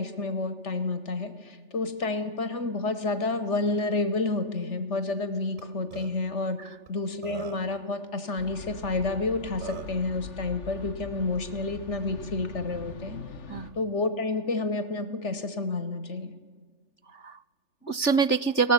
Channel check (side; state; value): right; late; 3.4 ms